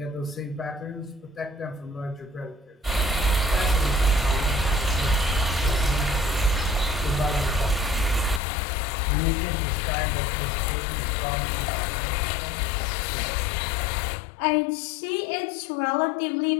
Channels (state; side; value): drops out; right; at 8.4 s